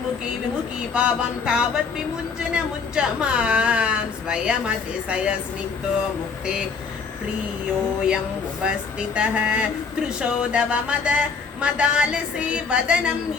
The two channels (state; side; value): quieter; right; 5.3 dB